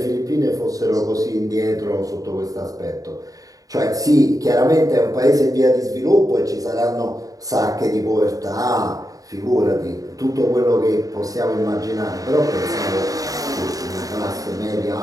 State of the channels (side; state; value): left; late; 0.17 ms